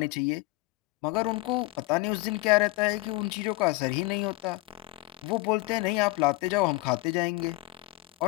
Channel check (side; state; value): right; quieter; 22.8 dB